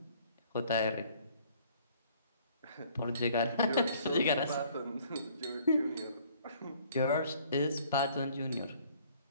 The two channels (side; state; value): both; inverted; correlation -0.58